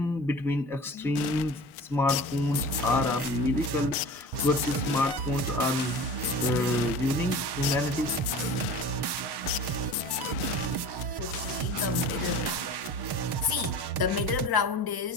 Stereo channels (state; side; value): normal; both; correlation 0.37